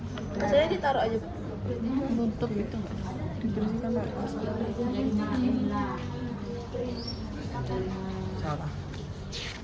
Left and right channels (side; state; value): both; identical; correlation 1.00